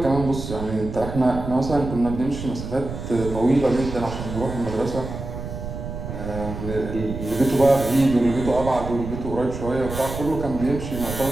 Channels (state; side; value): noise; right; rumble, 8 dB below the sound